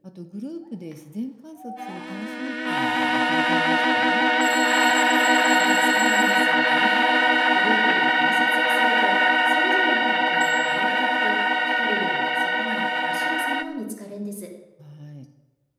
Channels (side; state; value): both; identical; correlation 1.00